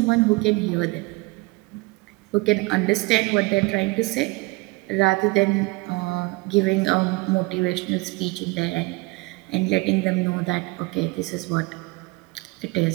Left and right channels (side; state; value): left; quieter; 24.0 dB